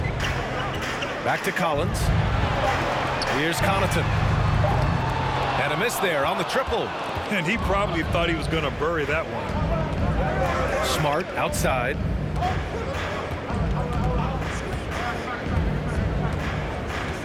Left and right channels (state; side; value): identical; both; correlation 1.00